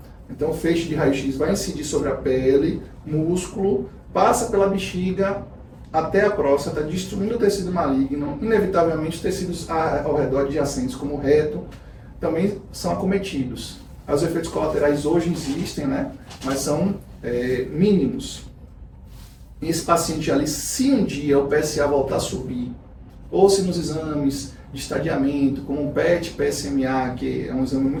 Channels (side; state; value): both; identical; correlation 1.00